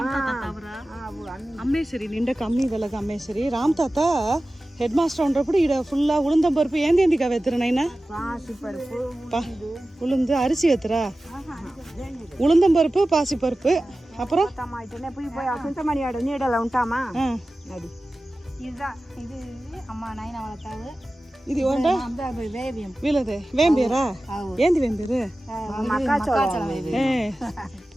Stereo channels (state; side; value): normal; both; correlation 0.96